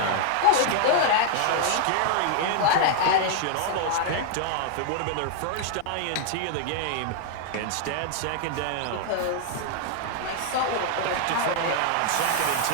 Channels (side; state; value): both; different; correlation 0.00